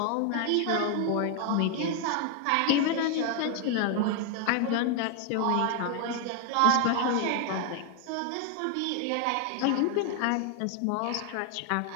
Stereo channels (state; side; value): different; both; correlation 0.00